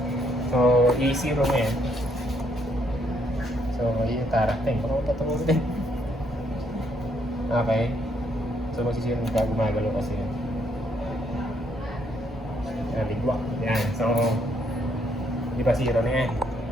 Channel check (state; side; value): normal; both; correlation 0.72